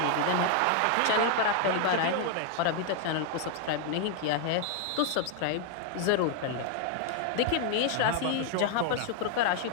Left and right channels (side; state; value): both; different; correlation 0.00